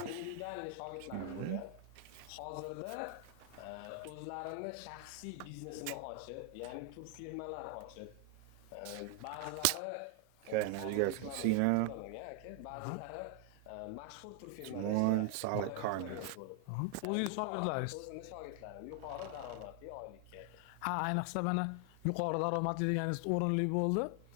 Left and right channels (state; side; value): different; both; correlation 0.00